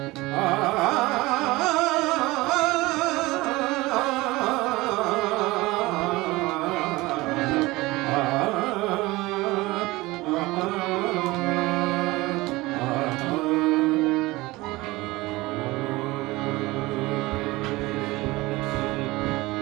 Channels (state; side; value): quieter; left; 20.7 dB